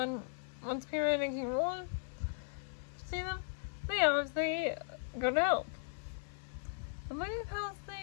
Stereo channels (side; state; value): right; silent; 53 dB below the other